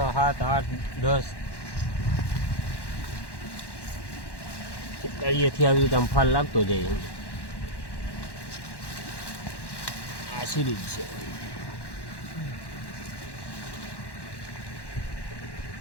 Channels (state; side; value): late; right; 1.1 ms